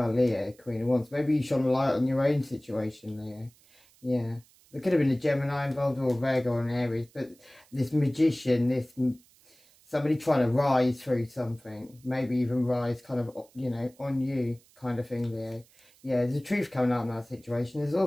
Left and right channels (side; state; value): right; noise; hiss, 29 dB below the sound